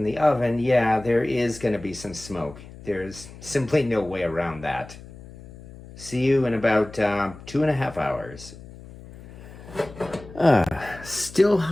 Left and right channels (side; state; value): left; noise; hum, 17 dB below the sound